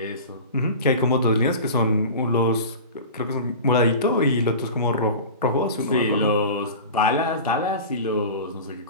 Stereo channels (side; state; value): both; inverted; correlation -0.33